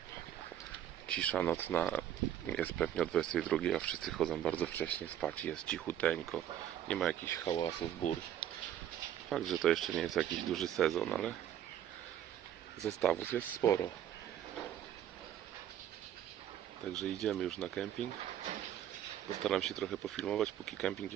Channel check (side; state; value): left; quieter; 10.8 dB